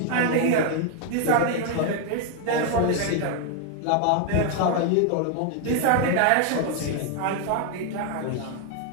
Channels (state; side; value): different; both; correlation 0.00